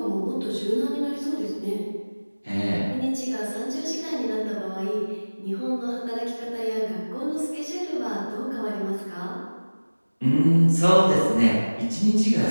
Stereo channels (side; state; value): both; inverted; correlation -1.00